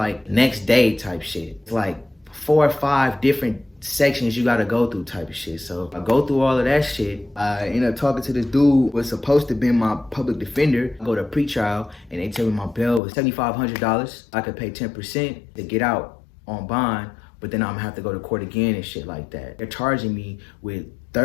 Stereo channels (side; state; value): right; drops out; at 13.0 s